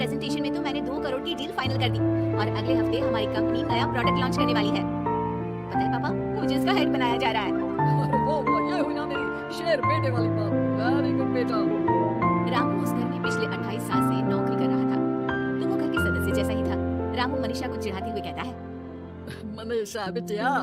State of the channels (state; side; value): identical; both; correlation 1.00